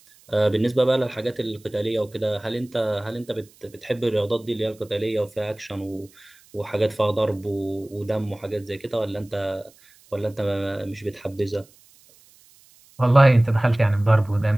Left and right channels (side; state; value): right; noise; hiss, 28 dB below the sound